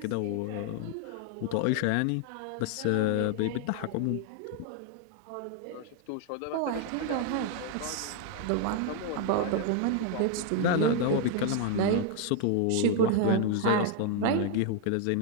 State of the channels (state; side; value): different; both; correlation 0.00